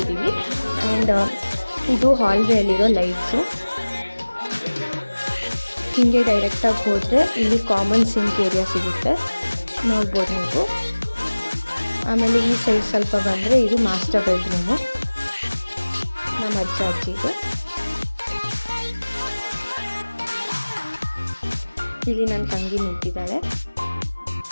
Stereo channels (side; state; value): both; inverted; correlation -1.00